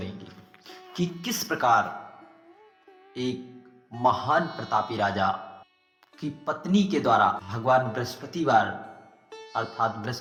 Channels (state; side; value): identical; both; correlation 1.00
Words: कि किस प्रकार एक महान प्रतापी राजा की पत्नी के द्वारा भगवान बृहस्पतिवार अर्थात